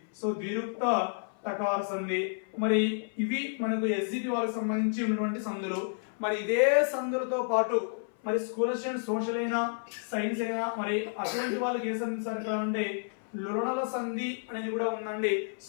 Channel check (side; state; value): right; silent; 56 dB below the other